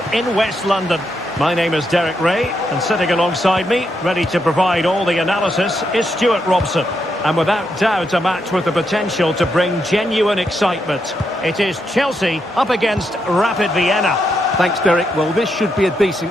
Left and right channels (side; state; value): both; normal; correlation 0.81